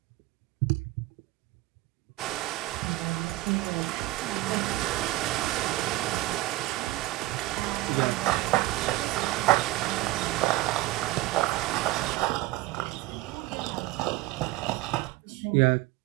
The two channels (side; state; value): left; quieter; 18.3 dB